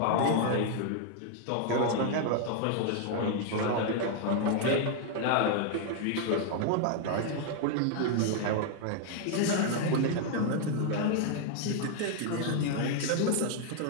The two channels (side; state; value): both; different; correlation 0.00